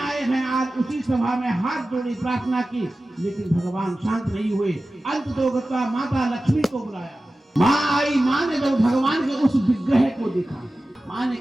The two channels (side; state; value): both; normal; correlation 0.95